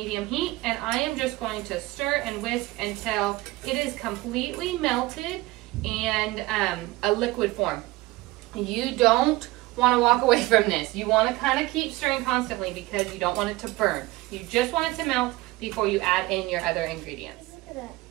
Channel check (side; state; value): left; quieter; 19.7 dB